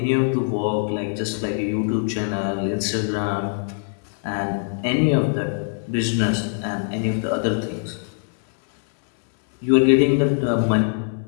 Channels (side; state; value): right; silent; 64 dB below the other